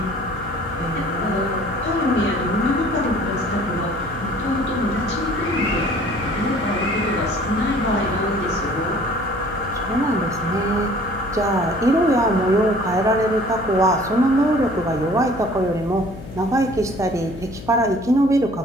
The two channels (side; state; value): left; noise; hum, 14 dB below the sound